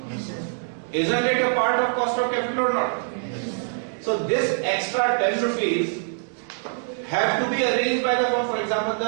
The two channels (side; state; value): left; silent; digital silence